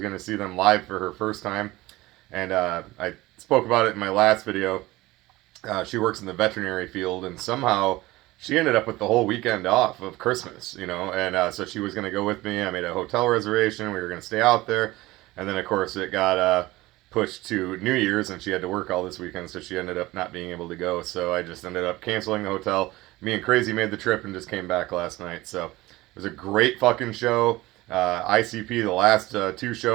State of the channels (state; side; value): quieter; left; 19.1 dB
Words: going to see them live for her first time. And I spoke about it in my last video. She works in the veterinary field, and somehow she ended up with the whole weekend off of Christmas, and so she was going to go with me. I made a hotel reservation. We were going to stay out there. And then, of course, it got pushed to New Year's, and she had to work all this weekend, so she ended up not being able to go. So I just ended up canceling the hotel. Me and Crazy made the trip and just came back last night. So it was a great fucking show. ICP, the last two